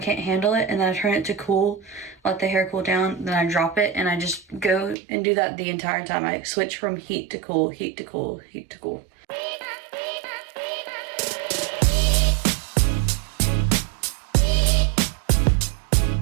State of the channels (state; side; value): drops out; left; at 5.0 s